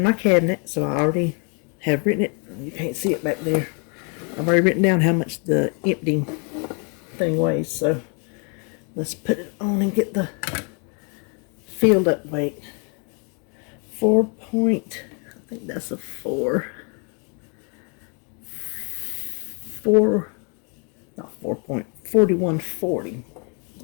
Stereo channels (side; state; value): right; quieter; 37.3 dB